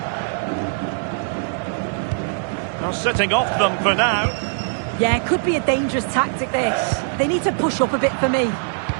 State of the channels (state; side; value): silent; left; digital silence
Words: Now sitting off them for now. Yeah, it could be a dangerous tactic, this. They need to push up a bit for me.